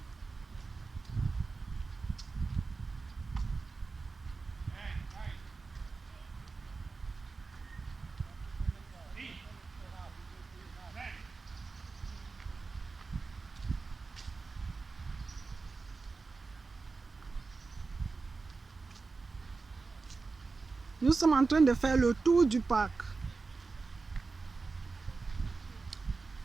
Nous sommes en train de faire le tour du parc.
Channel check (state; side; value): quieter; left; 4.1 dB